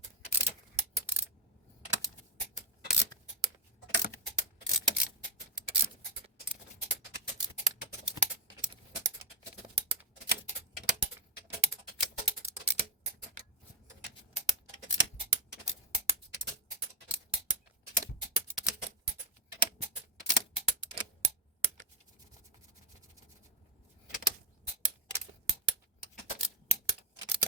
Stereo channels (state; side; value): normal; both; correlation 0.02